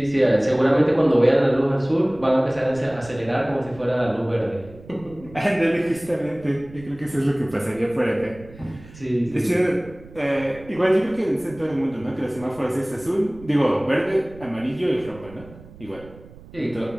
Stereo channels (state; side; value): noise; right; rumble, 20 dB below the sound